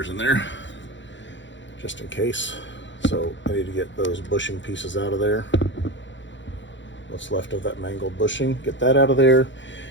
in there, just in case. So I need to get those bushing pieces out of there. What's left of that mangled bushing, get that out of there.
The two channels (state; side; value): late; right; 0.54 ms